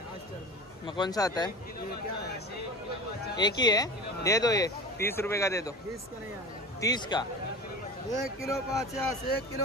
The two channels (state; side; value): normal; both; correlation 0.33